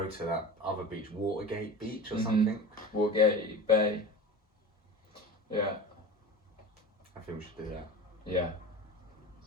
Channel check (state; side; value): normal; both; correlation 0.32